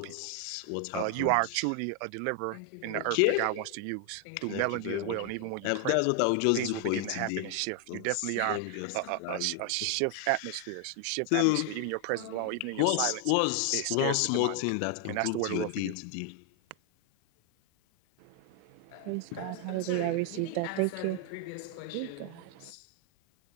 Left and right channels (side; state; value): both; different; correlation 0.00